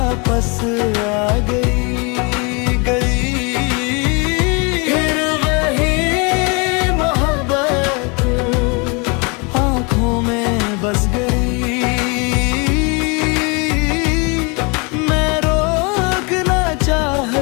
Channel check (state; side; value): quieter; right; 31.0 dB